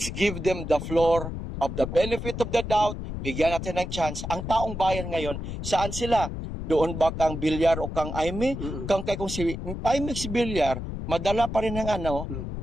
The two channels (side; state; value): left; noise; rumble, 6 dB below the sound